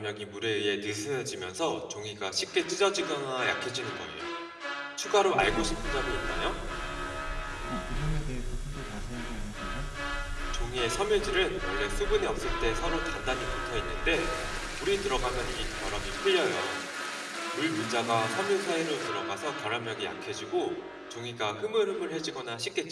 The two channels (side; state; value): both; identical; correlation 1.00